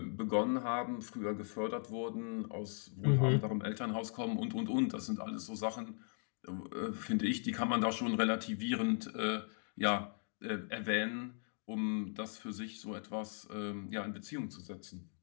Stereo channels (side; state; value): right; silent; 52 dB below the other